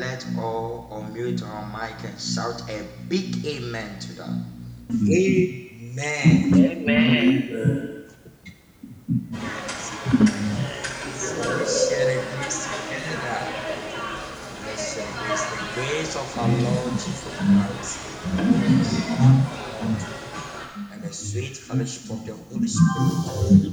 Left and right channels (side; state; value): both; identical; correlation 1.00